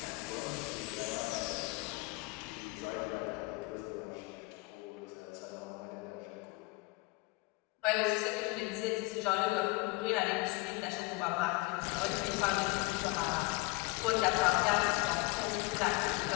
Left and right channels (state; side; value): quieter; right; 24.0 dB